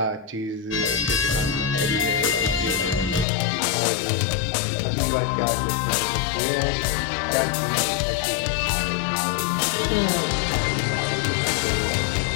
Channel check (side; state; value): right; drops out; at 3.2 s